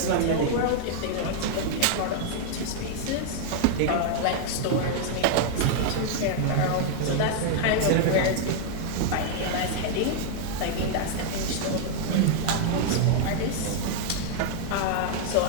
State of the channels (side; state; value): both; different; correlation -0.01